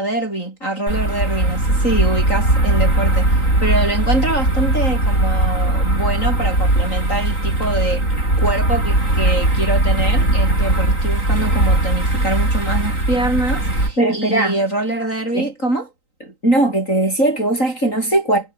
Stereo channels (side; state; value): right; late; 3.9 ms